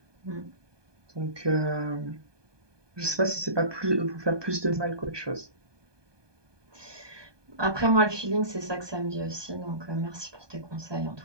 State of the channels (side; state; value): left; late; 1.2 ms